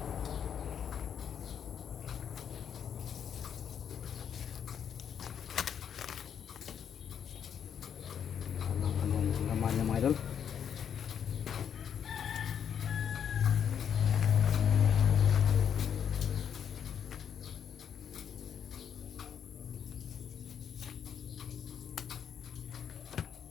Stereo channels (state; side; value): quieter; right; 8.3 dB